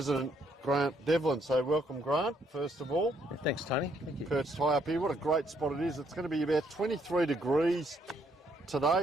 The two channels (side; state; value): both; normal; correlation 0.71